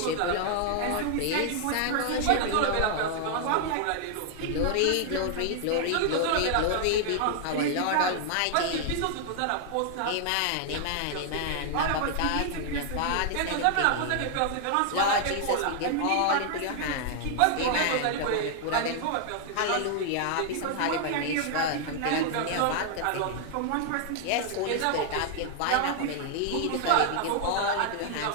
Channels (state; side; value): different; both; correlation 0.00